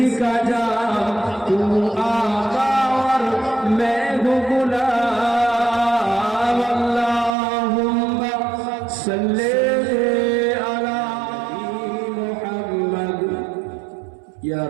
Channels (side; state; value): left; drops out; at 7.4 s